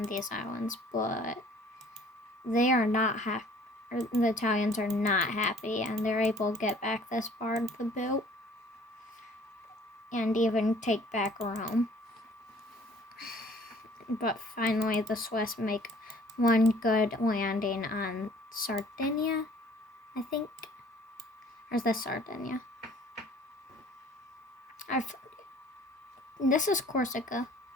these islands, but they are not happy. The Italians are not happy, and they're able to get back this part of the boot and even take back Rome. But finally, the Swiss make one good landing on Sardinia, I think. Or is this Sardinia? This is Corsica.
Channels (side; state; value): both; normal; correlation 0.54